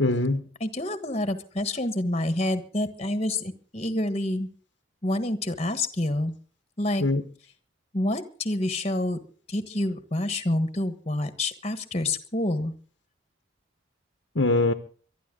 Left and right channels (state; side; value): normal; both; correlation 0.59